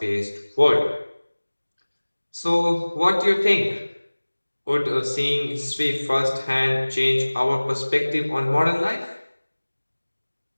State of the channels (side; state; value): both; inverted; correlation -1.00